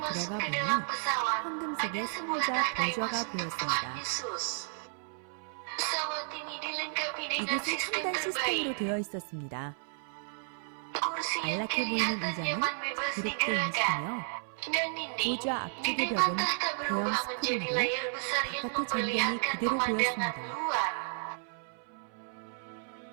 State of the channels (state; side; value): silent; left; 56 dB below the other